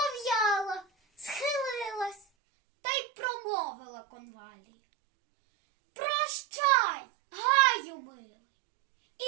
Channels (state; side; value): drops out; left; at 2.2 s